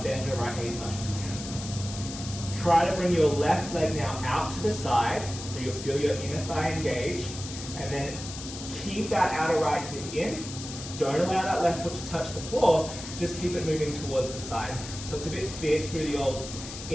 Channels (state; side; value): noise; left; hiss, 10 dB below the sound